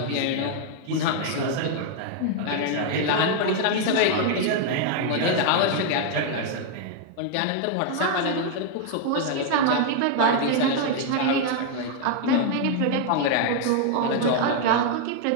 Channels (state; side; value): different; both; correlation 0.00